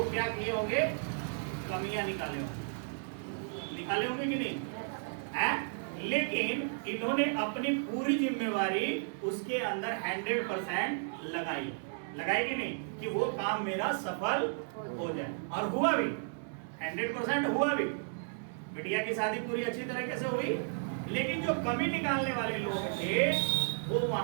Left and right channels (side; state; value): left; silent; digital silence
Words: क्या किए होंगे? कमियां निकाले होंगे कि नहीं है? लेकिन इन्होंने अपनी पूरी जिम्मेवारी उसके अंदर 100% लगाई कि नहीं, कि वो काम मेरा सफल हो जाए, और हुआ भी, 100% हुआ भी। बिटिया की शादी पूरी अच्छी तरीके से हुई, लेकिन जो कमी निकालने वाले लोग थे वो